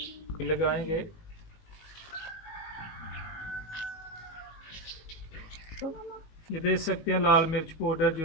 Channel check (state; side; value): late; right; 19 ms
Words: लगाएंगे। ये देख सकते हैं लाल मिर्च पाउडर